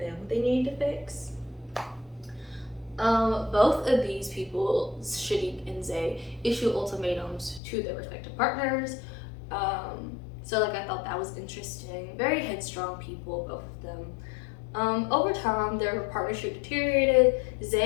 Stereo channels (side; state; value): right; drops out; at 7.6 s